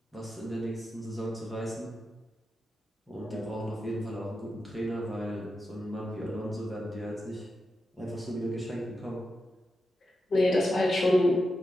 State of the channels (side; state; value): both; normal; correlation 0.88